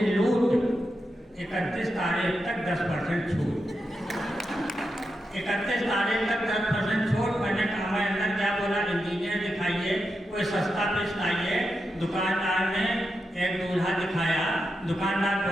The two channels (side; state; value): both; normal; correlation 0.87